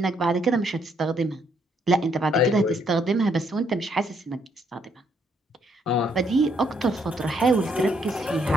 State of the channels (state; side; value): normal; both; correlation 0.71